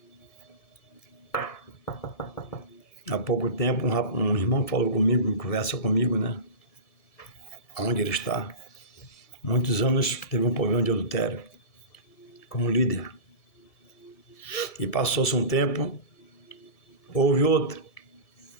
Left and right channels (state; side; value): late; right; 1.7 ms